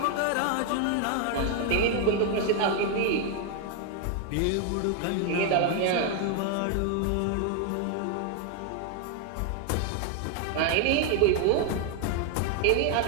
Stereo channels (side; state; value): both; different; correlation 0.01